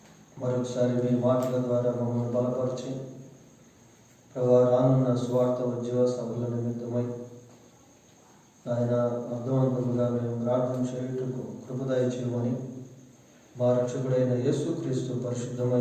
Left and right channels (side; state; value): both; identical; correlation 1.00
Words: మరొకసారి మీ మాటల ద్వారా మమ్మల్ని బలపరిచి ప్రభా, రానున్న స్వార్థ ఉద్యోగ సభల నిమిత్తమై ఆయన అర్థవంతముగా మేము ప్రార్థన చేయుటకు కృపదయ చేయమని మా రక్షకుడైన యేసుక్రీస్తు